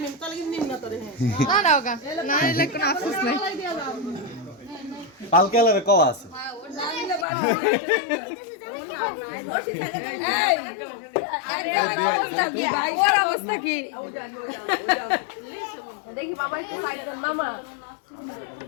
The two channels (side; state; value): right; drops out; at 7.2 s